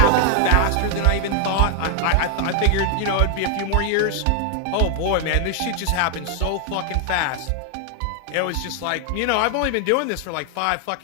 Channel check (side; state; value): both; different; correlation 0.00